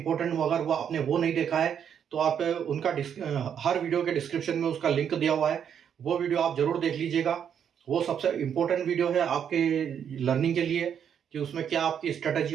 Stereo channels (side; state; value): left; quieter; 8.3 dB